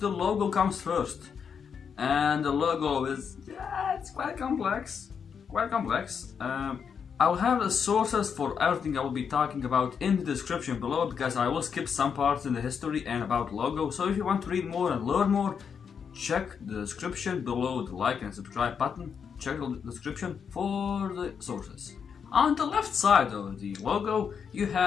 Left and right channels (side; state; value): right; quieter; 6.8 dB